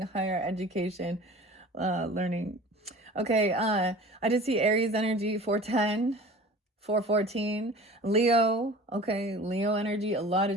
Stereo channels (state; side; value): normal; both; correlation 0.42